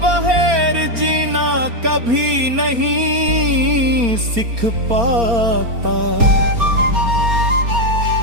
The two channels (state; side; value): late; left; 4.3 ms